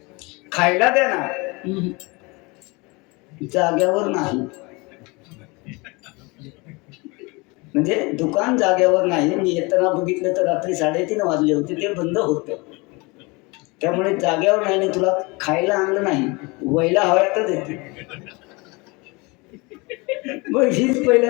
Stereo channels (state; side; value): quieter; right; 26.5 dB